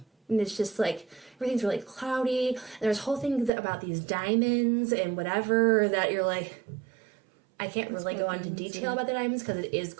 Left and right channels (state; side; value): drops out; left; at 3.5 s